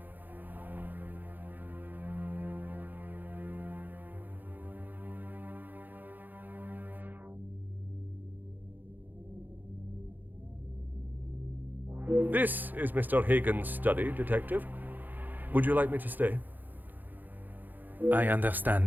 This is Mr. Hagen's study, Detective. Would you like me to stay? I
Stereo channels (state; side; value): late; left; 0.086 ms